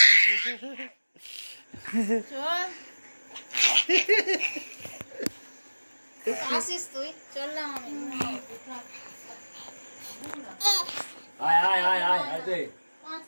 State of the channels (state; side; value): inverted; both; correlation -1.00